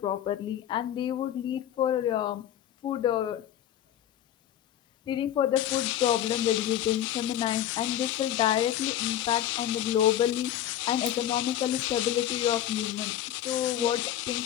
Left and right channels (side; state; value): right; quieter; 11.6 dB